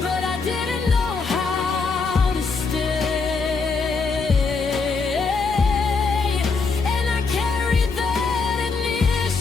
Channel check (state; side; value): quieter; right; 4.6 dB